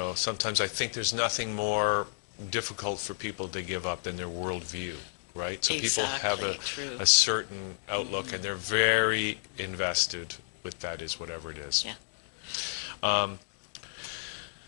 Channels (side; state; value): right; silent; digital silence